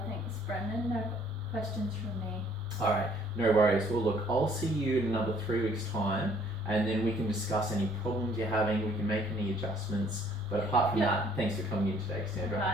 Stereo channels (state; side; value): normal; both; correlation 0.60